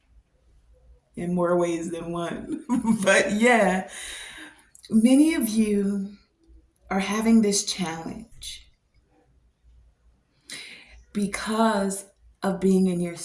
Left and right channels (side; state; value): both; identical; correlation 1.00